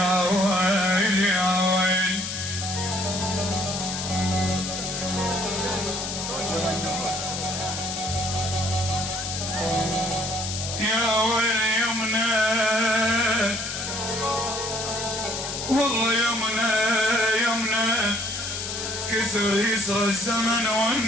ويلي يا ويلي يا ويلي يمنى والله يمنى يمنى كسر يسرى الزمن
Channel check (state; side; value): noise; left; hiss, 5 dB below the sound